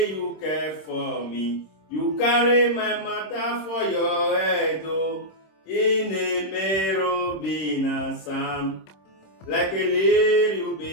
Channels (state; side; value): late; right; 26 ms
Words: you care for me. You carry my matter for your head, oh. In a merobina Sam, like a little